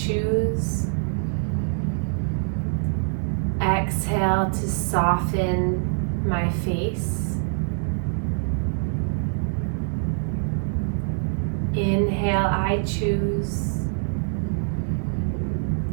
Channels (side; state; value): left; silent; digital silence